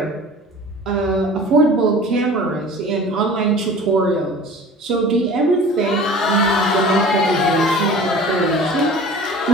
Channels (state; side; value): normal; both; correlation 0.42